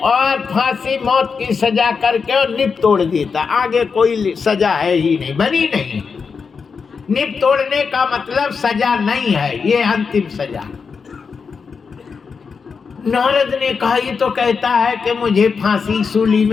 और फांसी मौत की सजा करके और निप तोड़ देता, आगे कोई सजा है ही नहीं, बनी नहीं। निप तोड़ने का मतलब सजा नहीं है, ये अंतिम सजा। नारद ने कहा ये तो कहता है कि मुझे फांसी सूली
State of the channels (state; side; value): quieter; right; 5.5 dB